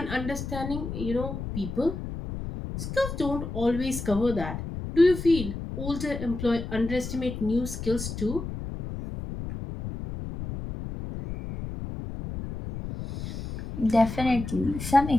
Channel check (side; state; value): left; noise; rumble, 7 dB below the sound